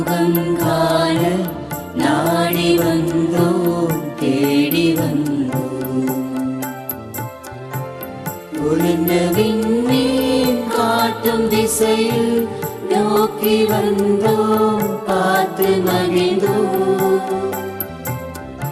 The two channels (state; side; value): identical; both; correlation 1.00